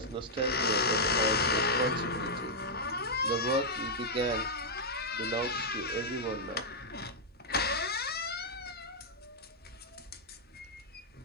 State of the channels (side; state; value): both; normal; correlation -0.06